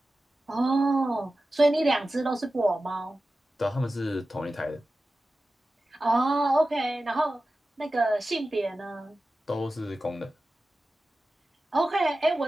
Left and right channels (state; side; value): normal; both; correlation 0.94